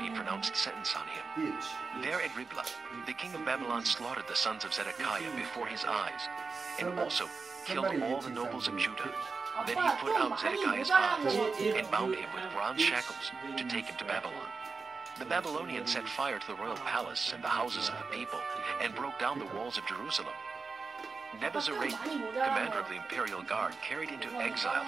pronounced sentence on him. There at Riblah, the king of Babylon slaughtered the sons of Zedekiah before his eyes, and also killed all the nobles of Judah. Then he put out Zedekiah's eyes, and bound him with bronze shackles to take him to Babylon. The Babylonians set fire to the royal palace and the houses of the people, and broke down the walls of Jerusalem. Nebuzaradan, commander of the imperial guard, carried into exile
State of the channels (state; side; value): quieter; left; 4.5 dB